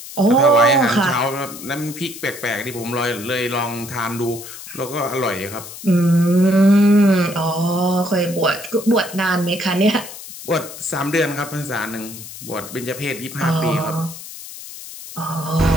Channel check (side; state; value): left; noise; hiss, 13 dB below the sound